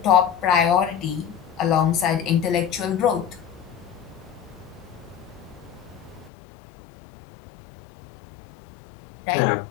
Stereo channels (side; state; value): right; drops out; at 6.3 s